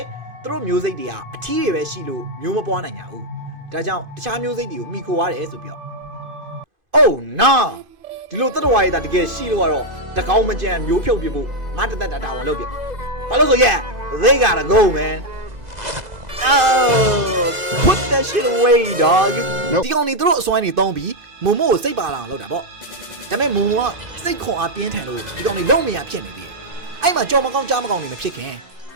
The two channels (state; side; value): late; left; 2.0 ms